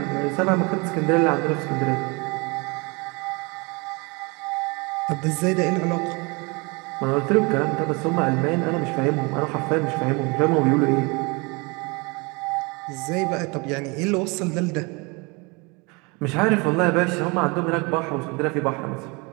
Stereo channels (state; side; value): quieter; left; 28.3 dB